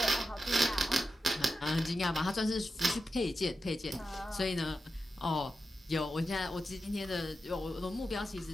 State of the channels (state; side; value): normal; both; correlation 0.90